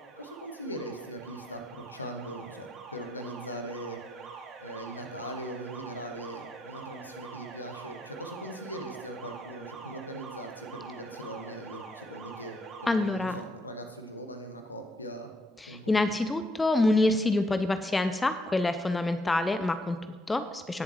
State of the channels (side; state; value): both; normal; correlation 0.74